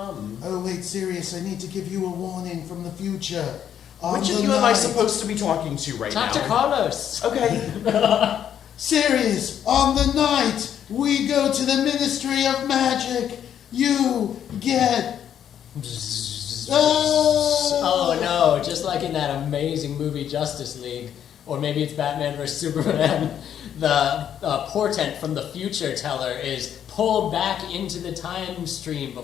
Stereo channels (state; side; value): quieter; right; 9.5 dB